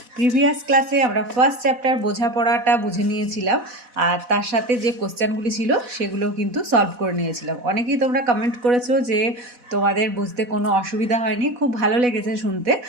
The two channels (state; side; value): late; left; 4.1 ms